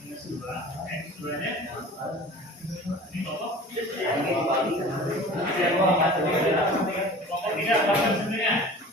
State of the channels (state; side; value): normal; both; correlation 0.41